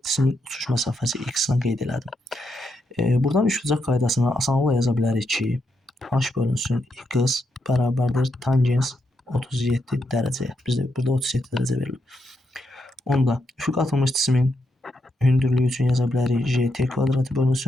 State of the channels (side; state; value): both; normal; correlation 0.81